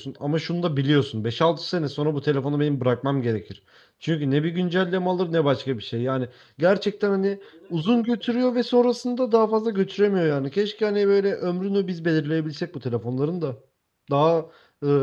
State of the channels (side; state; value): both; identical; correlation 1.00